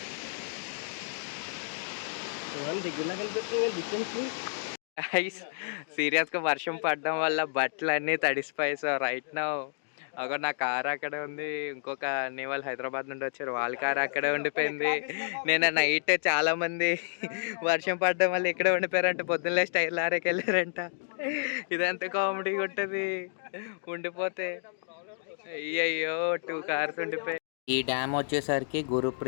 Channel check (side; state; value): right; silent; digital silence